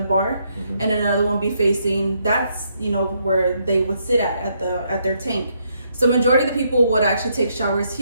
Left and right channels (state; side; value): inverted; both; correlation -0.75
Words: and another one be facing, that's, you know, where they would sit at their tank. So majority of the people would actually take showers